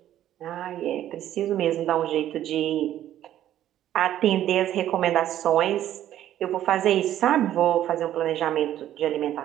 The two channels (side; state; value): left; quieter; 12.1 dB